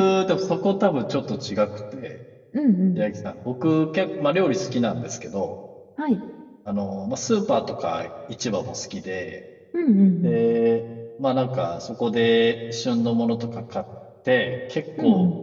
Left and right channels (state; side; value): identical; both; correlation 1.00